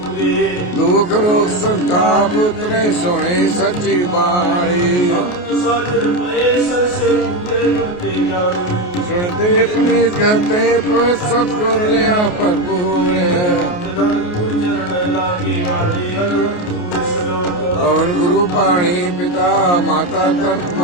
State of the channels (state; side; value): late; right; 28 ms